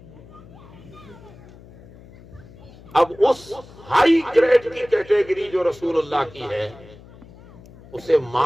اب اس ہائی گریڈ کی کیٹیگری جو رسول اللہ کی ہے، اسے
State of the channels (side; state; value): left; noise; hum, 21 dB below the sound